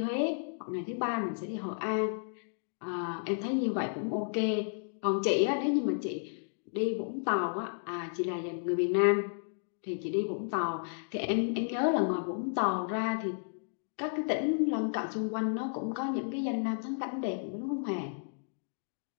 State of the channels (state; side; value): silent; right; digital silence